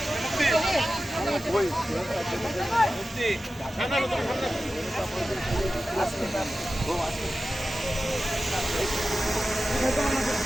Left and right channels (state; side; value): normal; both; correlation 0.94